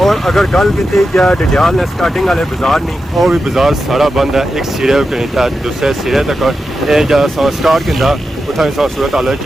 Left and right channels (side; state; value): both; normal; correlation 0.90